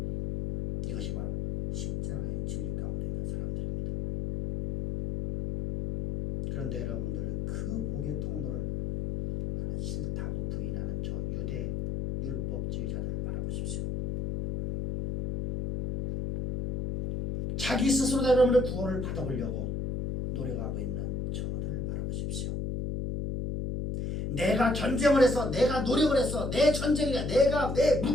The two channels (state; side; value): noise; left; hum, 2 dB below the sound